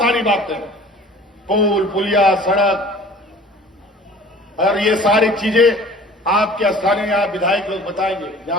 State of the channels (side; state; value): both; normal; correlation 0.47